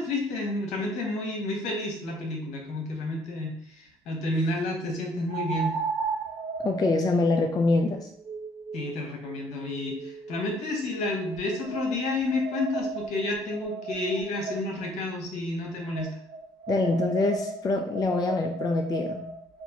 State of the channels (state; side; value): normal; both; correlation 0.63